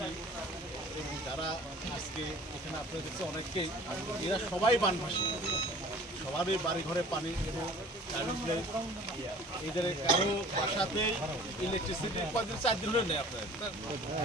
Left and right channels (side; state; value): both; normal; correlation 0.47